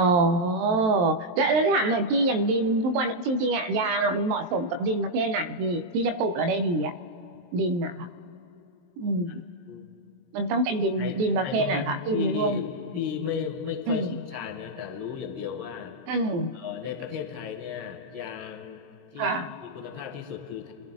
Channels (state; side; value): late; left; 23 ms